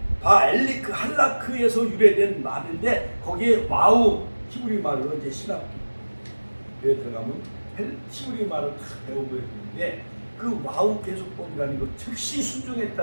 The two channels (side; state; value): both; inverted; correlation -1.00